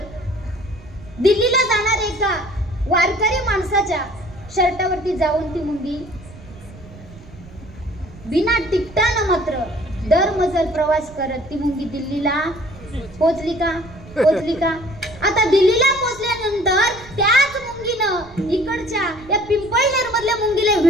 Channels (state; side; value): noise; right; rumble, 19 dB below the sound